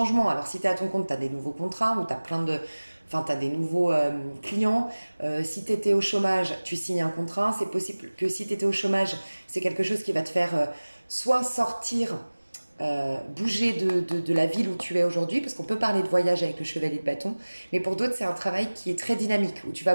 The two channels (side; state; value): both; inverted; correlation -1.00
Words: Alors si tu es à ton compte, tu as des nouveaux contrats ou tu as des nouveaux clients. Si tu étais au chômage, tu signes un contrat. C'est possible que si tu étais au chômage, c'est quelque chose qui va te faire soit sortir, bouger de la ville où tu es aujourd'hui, parce qu'on peut parler de voyage avec le chevalier de bâton, mais pour d'autres, c'est un travail qui est très dynamique, où tu vas